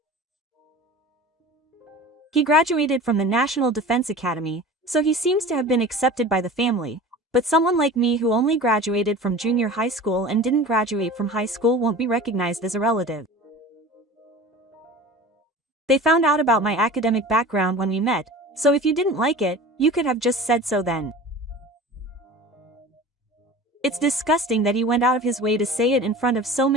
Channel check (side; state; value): both; normal; correlation 0.38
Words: He graduated from the National Defense Academy, so he seems to have been accepted by the family, but someone like me who only graduated from junior high school and didn't graduate from high school won't be recognized as a relative. They found out about my academic background when we met, so if you didn't like it, you could have just said so then. It's disgusting that he went out of his way to say it in front of so